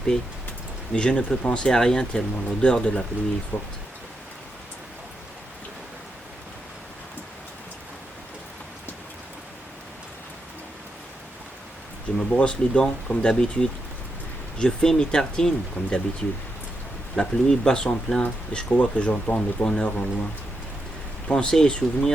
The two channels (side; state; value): both; normal; correlation 0.84